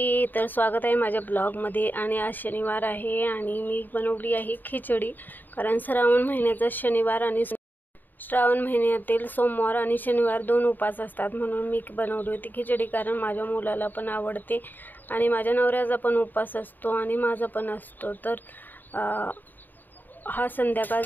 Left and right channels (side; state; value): right; late; 0.089 ms